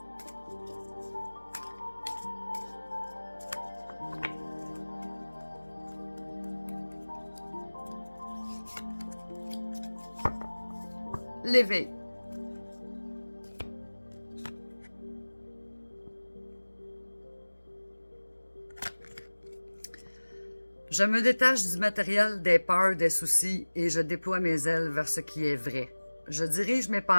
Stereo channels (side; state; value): both; inverted; correlation -1.00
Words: L'éveil. Je me détache du matériel, des peurs, des soucis et je déploie mes ailes vers ce qui est vrai. Je dirige mes